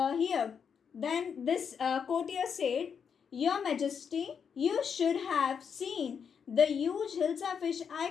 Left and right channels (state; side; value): quieter; right; 6.9 dB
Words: then this courtier said, Your Majesty, you should have seen the huge Hilsa fish